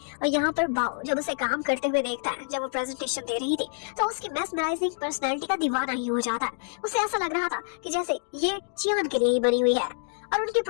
और यहाँ पर बाओ जब उसे काम करते हुए देखता है, जब वो प्रेजेंटेशन दे रही थी तो उसकी मेस्मराइजिंग पर्सनैलिटी का दीवाना ही हो जाता है। उसे ऐसा लग रहा था कि जैसे ये चियान के लिए ही बनी हुई है और उनकी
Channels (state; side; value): silent; right; digital silence